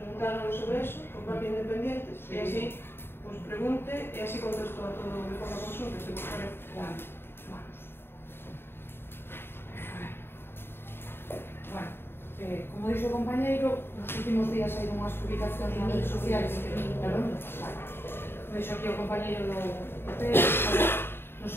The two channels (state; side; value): late; right; 0.11 ms